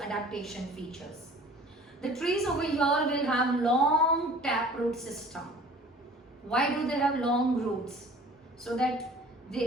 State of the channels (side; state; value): both; normal; correlation 0.48